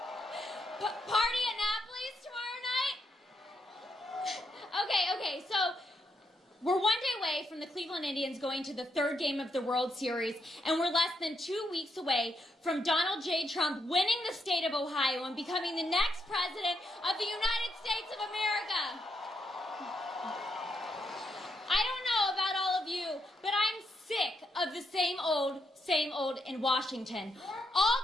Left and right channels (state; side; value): normal; both; correlation 0.79